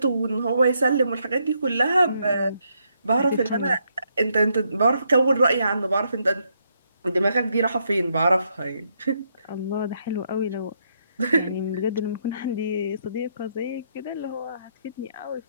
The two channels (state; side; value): inverted; both; correlation -0.76